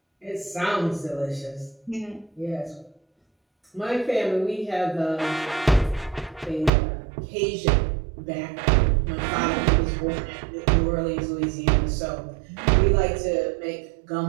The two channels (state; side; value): drops out; left; at 6.7 s